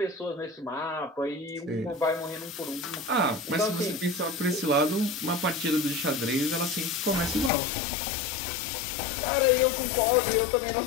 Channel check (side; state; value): right; drops out; at 7.5 s